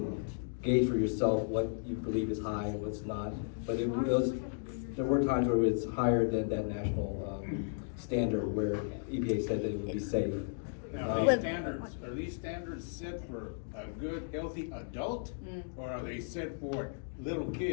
gauge for yourself what you believe is high and what's not. But there were times where it's higher than that national standard where EPA said that it would be safe. Now, are these standards set for a good, healthy adult? Or are they set for little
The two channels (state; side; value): silent; right; digital silence